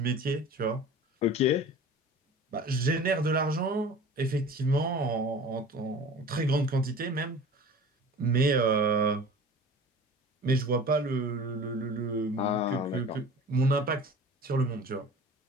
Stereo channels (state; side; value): normal; both; correlation 0.40